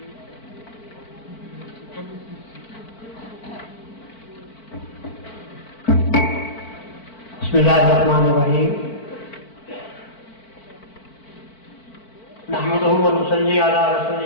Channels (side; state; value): right; late; 4.5 ms